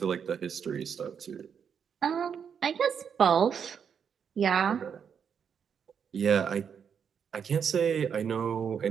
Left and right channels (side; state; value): left; quieter; 7.3 dB